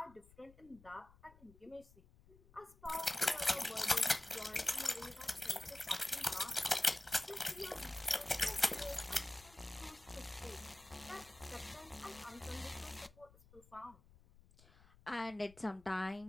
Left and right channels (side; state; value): left; noise; rumble, 24 dB below the sound